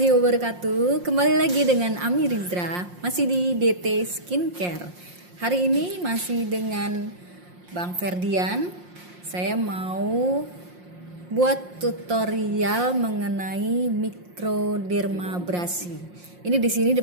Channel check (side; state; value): left; late; 5.6 ms